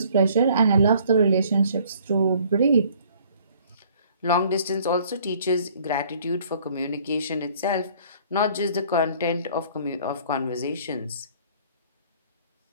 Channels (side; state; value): both; inverted; correlation -0.57